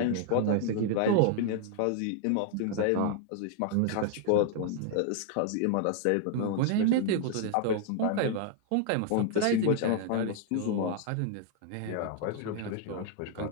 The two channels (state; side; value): different; both; correlation 0.00